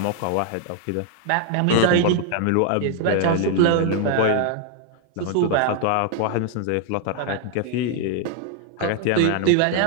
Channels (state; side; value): different; both; correlation 0.00